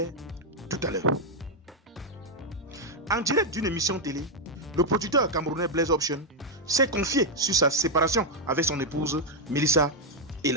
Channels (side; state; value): both; normal; correlation 0.00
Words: tout à l'heure. En direct d'une émission télé, le producteur camerounais Blaise Option s'est confié sur sa séparation avec son épouse Melissa